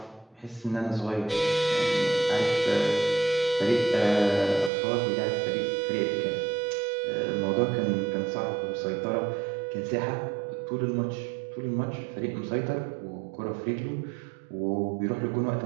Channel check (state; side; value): drops out; left; at 4.7 s